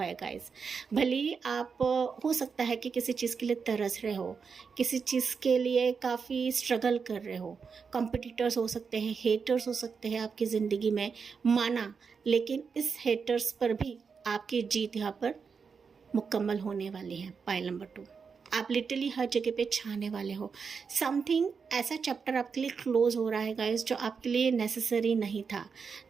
है गाइस। भले ही आप हो सकता है कि किसी चीज़ के लिए तरस रहे हो, किसी चीज़ के लिए काफ़ी स्ट्रगल कर रहे हो, कॉम्पिटिटर्स हो सकते हैं, हेटर्स हो सकते हैं आपकी ज़िंदगी में, माना, लेकिन इस हेटर्स पर भी आपकी जीत यहाँ पर मुकम्मल होने वाली है पाइल नंबर 2। आप लिटरली हर जगह पे छाने वाले हो। समथिंग ऐसा चैप्टर आपके लिए क्लोज हो रहा है गाइस, जो आपके लिए नेसेसरी नहीं था,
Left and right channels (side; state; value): left; quieter; 5.7 dB